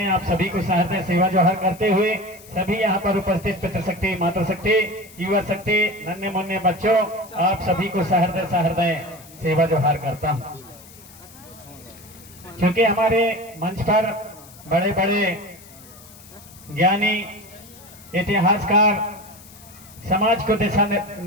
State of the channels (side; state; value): left; noise; hiss, 21 dB below the sound